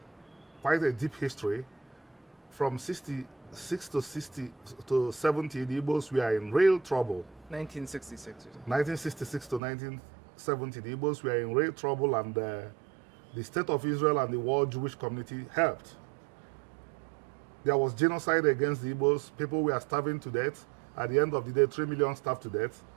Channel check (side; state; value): left; drops out; at 9.6 s